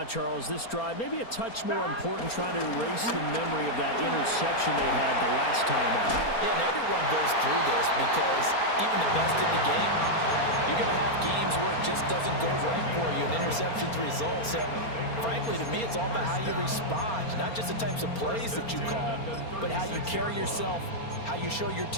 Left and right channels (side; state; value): right; late; 4.3 ms